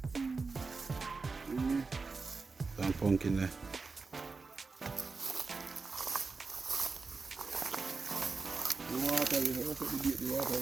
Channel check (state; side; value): quieter; left; 4.3 dB